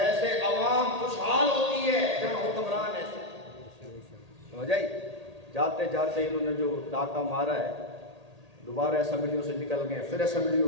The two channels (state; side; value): late; left; 1.8 ms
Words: عوام خوشحال ہوتی ہے جہاں حکمران ایسے، سمجھ آئی؟ جاتے جاتے انہوں نے جو ڈاکہ مارا ہے، دوبارہ اسمبلیوں سے نکل گئے، پھر